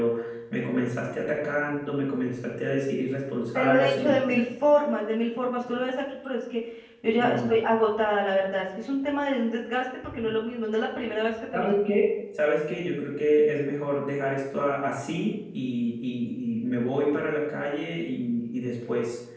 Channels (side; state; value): both; identical; correlation 1.00